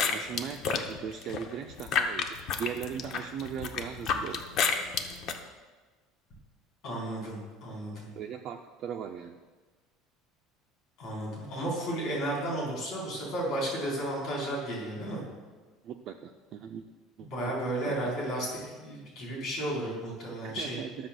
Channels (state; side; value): normal; both; correlation 0.44